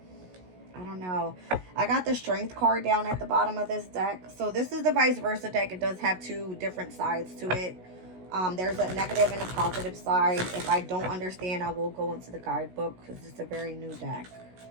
don't know. I got the Strength card down at the bottom of this deck. So this is the vice versa deck. It does have two different sides to it. There's a negative and a positive side. If I don't understand, I will go into the guidebook because it's a very new deck.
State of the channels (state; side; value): late; left; 16 ms